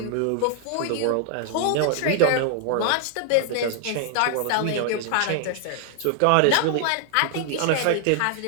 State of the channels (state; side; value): different; both; correlation 0.00